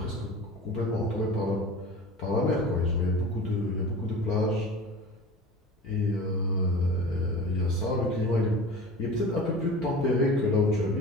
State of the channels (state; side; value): normal; both; correlation 0.37